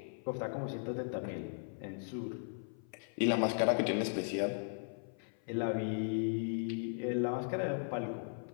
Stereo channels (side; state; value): right; silent; 53 dB below the other